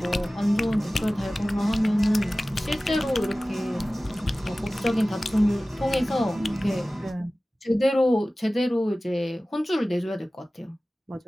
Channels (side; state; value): both; normal; correlation 0.97